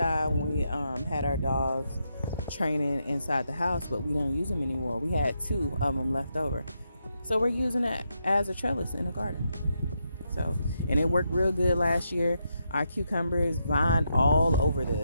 when we had our dogs training inside the house, but we don't use them anymore. We had 2 of them left over, so we're using it as a trellis in the garden. So, and it worked real good last year. Our cucumbers vined all over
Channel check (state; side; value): inverted; both; correlation -0.81